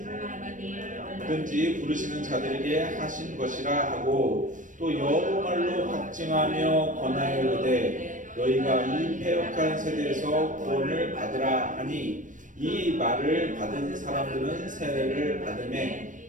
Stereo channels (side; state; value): left; late; 0.37 ms